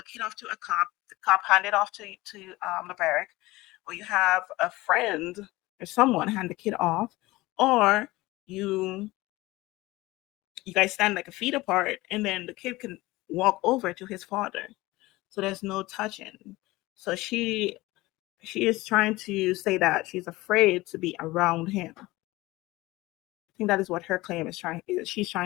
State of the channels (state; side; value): quieter; right; 19.8 dB